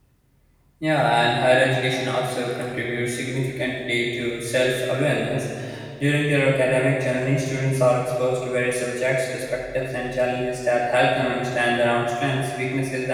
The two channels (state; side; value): identical; both; correlation 1.00